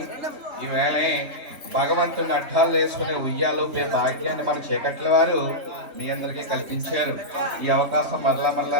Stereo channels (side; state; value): left; late; 3.4 ms